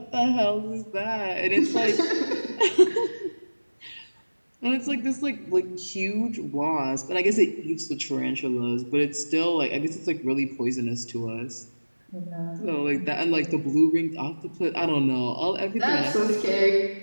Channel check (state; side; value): inverted; both; correlation -1.00